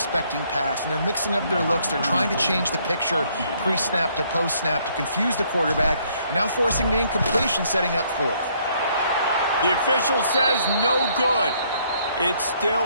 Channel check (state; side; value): inverted; both; correlation -0.67